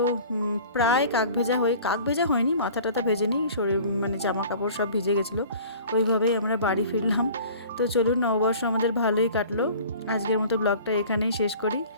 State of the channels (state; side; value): inverted; both; correlation -0.45